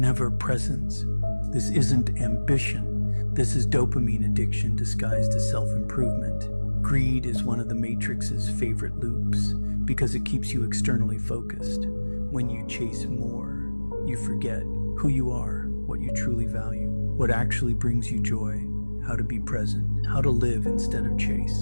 presence. This isn't ambition. This is dopamine addiction disguised as self-improvement. Greed is one of the Matrix's favorite loops, because it keeps you externally focused. When you chase more, you forget who you are, what you truly value, what actually brings you joy, how to be present, how to live instead of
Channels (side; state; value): both; inverted; correlation -1.00